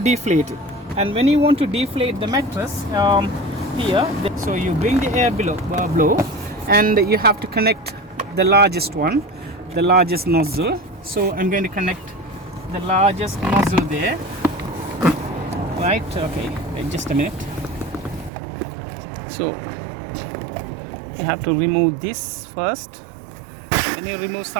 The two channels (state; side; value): drops out; left; at 18.3 s